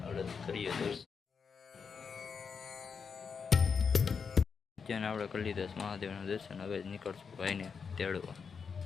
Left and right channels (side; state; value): right; quieter; 5.9 dB